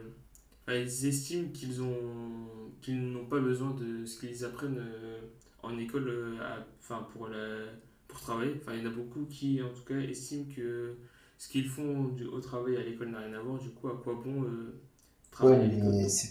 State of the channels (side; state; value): both; identical; correlation 1.00